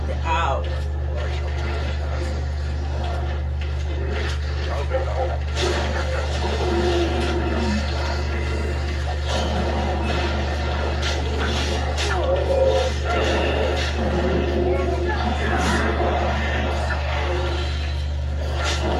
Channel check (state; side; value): identical; both; correlation 1.00